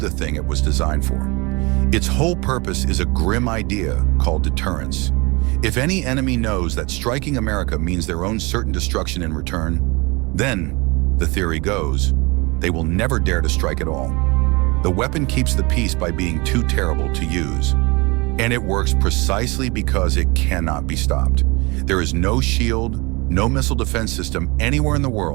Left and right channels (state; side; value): quieter; left; 26.3 dB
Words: thing it was designed for. Its whole purpose is a grim idea called deterrence. If any enemy knows that striking America means their own certain destruction in return, then, the theory goes, they will never dare to strike at all. The weapon keeps the peace by being too terrible to use. And it works precisely because it cannot be stopped. There is no shield, no missile defense system anywhere in the